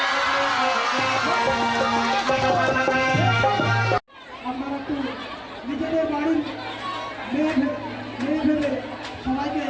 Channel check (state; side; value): identical; both; correlation 1.00